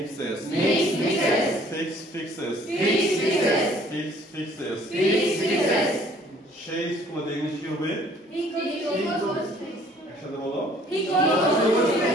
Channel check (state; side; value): normal; both; correlation 0.57